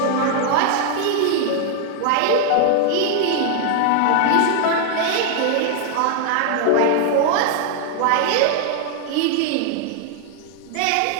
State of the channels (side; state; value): both; different; correlation 0.00